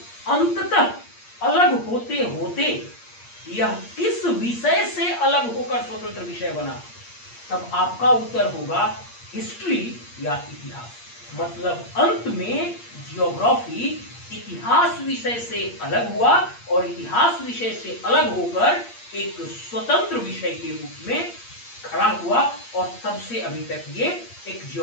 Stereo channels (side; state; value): right; late; 8.6 ms